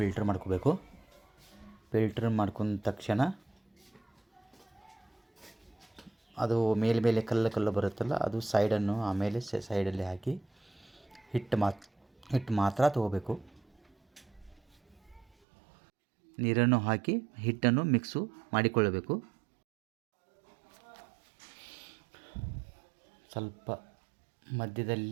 ಮಾಡ್ಕೋಬೇಕು. ಫಿಲ್ಟರ್ ಮಾಡ್ಕೊಂಡ ತಕ್ಷಣ ಅದು ಮೇಲೆ ಕಲ್ಲು ಬರುತ್ತಲ್ಲ, ಅದು ಸೈಡನ್ನು ಆಮೇಲೆ ಸೈಡಲ್ಲಿ ಹಾಕಿ ಹಿಟ್ಟು ಮಾತ್ರ ತಗೋಬೇಕು. ನೀರನ್ನು ಹಾಕಿ ಹಿಟ್ಟನ್ನು ಮಿಕ್ಸು ಮಾಡಿಕೊಳ್ಳಬೇಕು. ಸ್ವಲ್ಪ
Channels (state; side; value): drops out; left; at 15.2 s